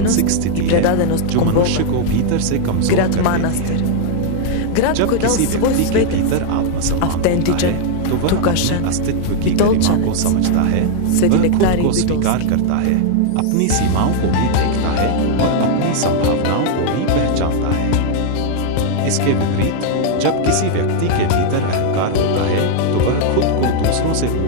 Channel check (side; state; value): both; different; correlation 0.00